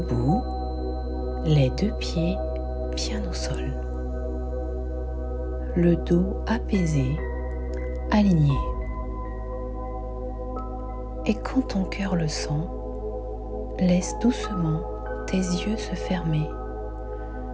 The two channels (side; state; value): both; identical; correlation 1.00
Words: les deux pieds bien au sol, le dos apaisé, aligné. Et quand ton cœur le sent, laisse doucement tes yeux se fermer,